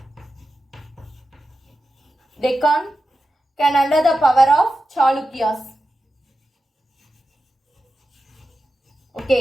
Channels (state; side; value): normal; both; correlation 0.91